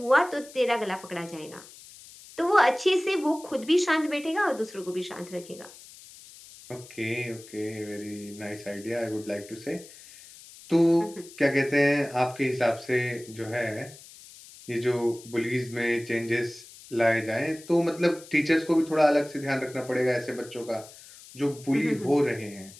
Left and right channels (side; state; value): left; noise; hiss, 19 dB below the sound